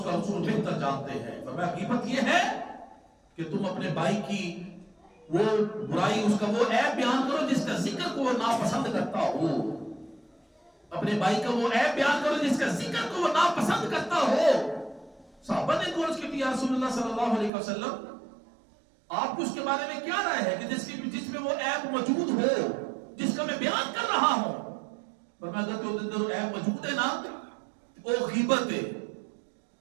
کا رسول بہتر جانتے ہیں، فرمایا غیبت یہ ہے کہ تم اپنے بھائی کی وہ برائی، اس کا وہ عیب بیان کرو جس کا ذکر کو وہ ناپسند کرتا ہو، اپنے بھائی کا وہ عیب بیان کرو جس کا ذکر کو وہ ناپسند کرتا ہو۔ صحابہ نے عرض کی یا رسول اللہ صلی اللہ علیہ وسلم آپ کو اس کے بارے میں کیا رائے ہے کہ جس میں وہ عیب موجود ہو جس کا میں بیان کر رہا ہوں؟ پر میں اگر تو اندر عیب موجود ہے نا وہ غیبت ہے،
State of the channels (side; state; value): left; drops out; at 17.5 s